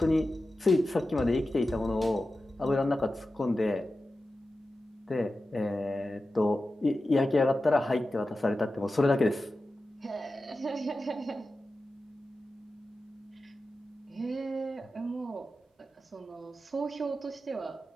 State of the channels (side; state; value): both; normal; correlation 0.93